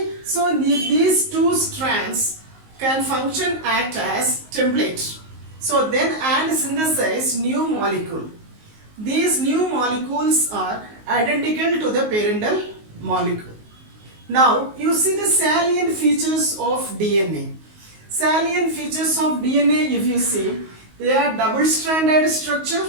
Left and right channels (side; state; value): left; late; 19 ms